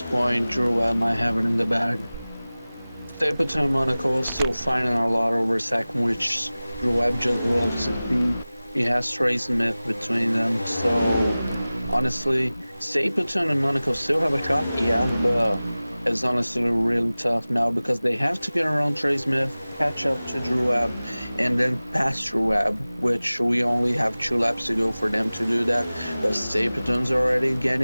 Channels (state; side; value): inverted; both; correlation -0.98